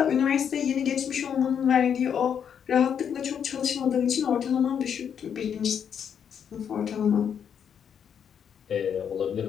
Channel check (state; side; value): quieter; right; 8.0 dB